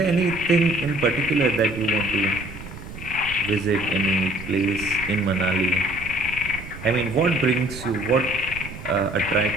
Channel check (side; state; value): right; noise; rumble, 13 dB below the sound